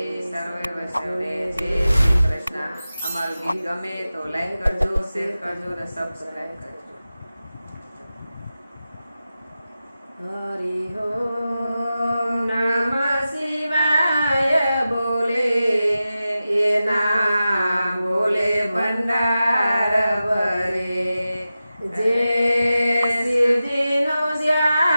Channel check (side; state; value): both; inverted; correlation -0.94